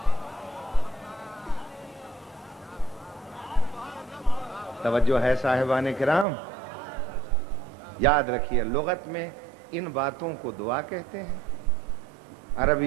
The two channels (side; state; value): left; drops out; at 6.2 s